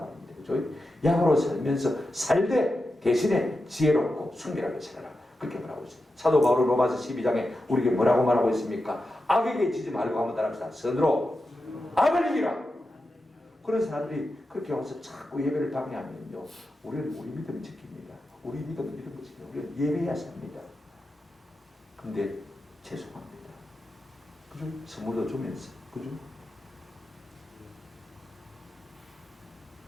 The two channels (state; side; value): normal; both; correlation 0.90